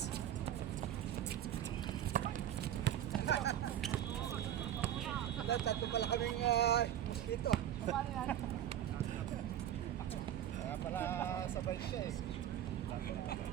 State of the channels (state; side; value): quieter; left; 11.1 dB